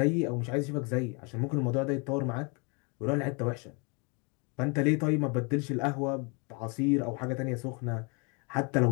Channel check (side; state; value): right; quieter; 32.3 dB